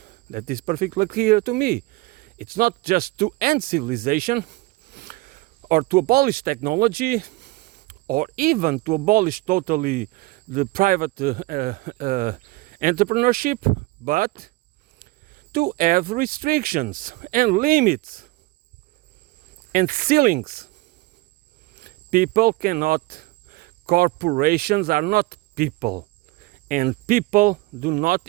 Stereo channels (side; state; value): left; quieter; 21.7 dB